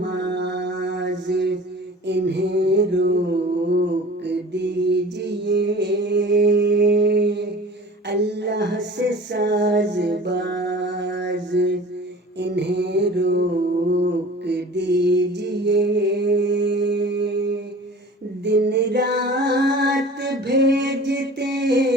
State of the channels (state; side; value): normal; both; correlation 0.42